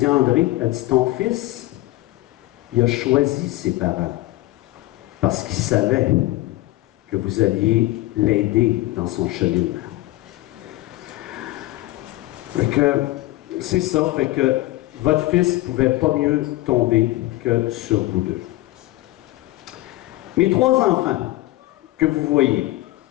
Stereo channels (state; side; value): quieter; right; 17.8 dB